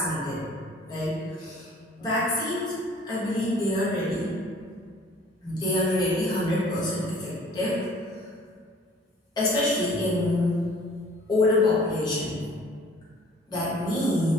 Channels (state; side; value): normal; both; correlation 0.53